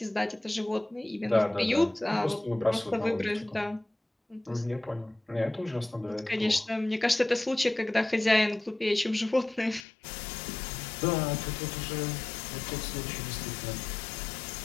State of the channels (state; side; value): drops out; right; at 9.9 s